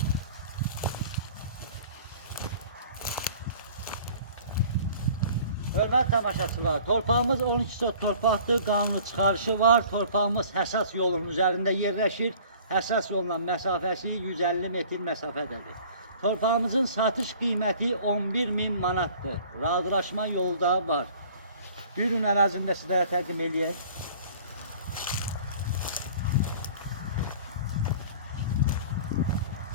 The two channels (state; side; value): inverted; both; correlation -0.48